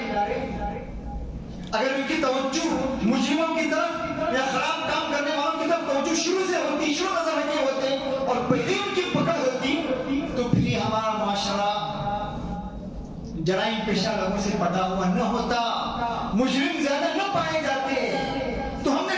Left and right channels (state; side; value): identical; both; correlation 1.00